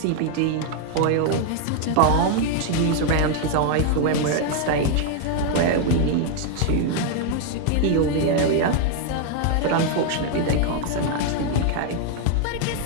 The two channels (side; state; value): both; different; correlation 0.00